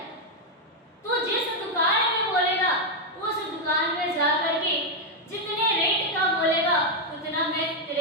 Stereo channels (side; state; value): both; normal; correlation 0.01